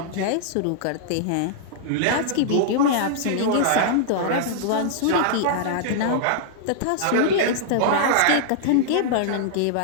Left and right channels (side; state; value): both; different; correlation -0.01